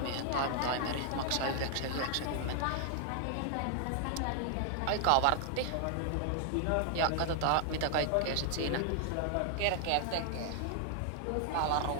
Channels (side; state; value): both; different; correlation 0.00